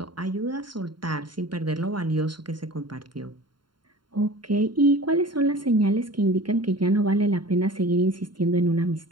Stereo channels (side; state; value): left; late; 0.72 ms